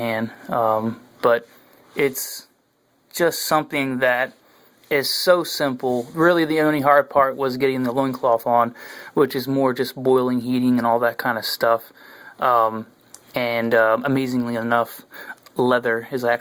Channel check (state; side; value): identical; both; correlation 1.00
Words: But it's just something that is so simple. Really, the only hard part was getting the loincloth on, which is more just boiling, heating, and all that kind of stuff. Amazingly enough, leather is